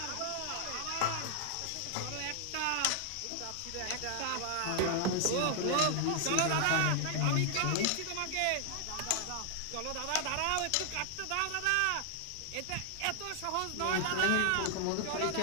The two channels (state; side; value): different; both; correlation 0.00